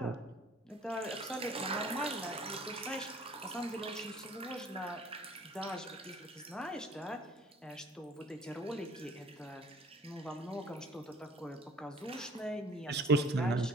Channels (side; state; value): both; normal; correlation 0.53